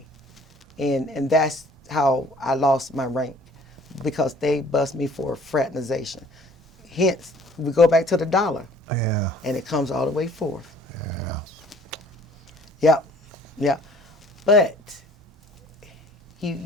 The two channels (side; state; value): both; normal; correlation 0.55